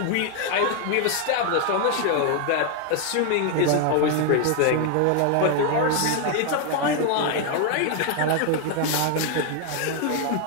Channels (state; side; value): different; both; correlation 0.01